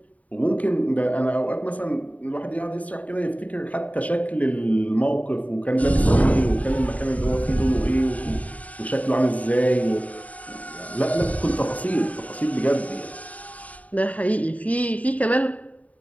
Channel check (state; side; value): late; right; 0.070 ms